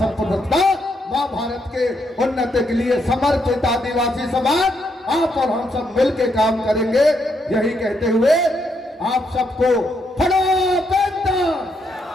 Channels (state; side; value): normal; both; correlation 0.77